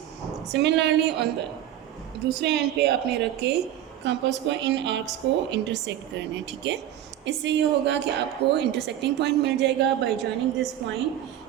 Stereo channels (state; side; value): quieter; left; 11.7 dB